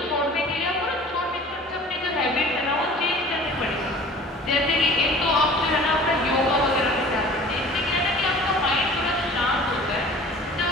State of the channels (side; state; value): both; normal; correlation 0.45